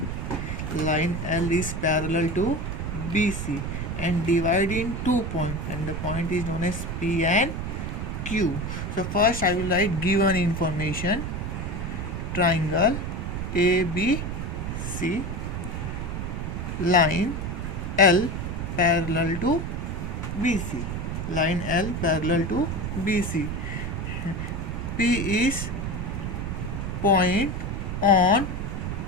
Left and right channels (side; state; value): right; noise; rumble, 4 dB below the sound